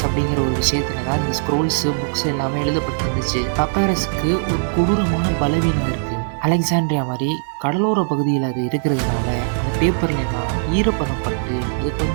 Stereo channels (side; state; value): left; silent; digital silence